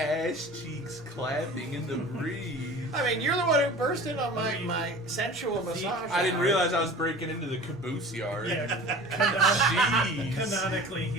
cheeks clapping in the breeze. I mean, you're the one who burst in on my sensual massage. I didn't hour. realize I was breaking into the caboose yard. Yeah, Jeez. canonically,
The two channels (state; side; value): normal; both; correlation 0.40